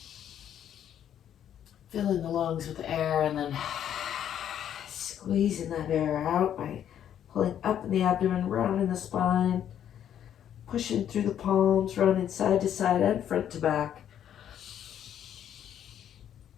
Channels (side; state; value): right; quieter; 9.9 dB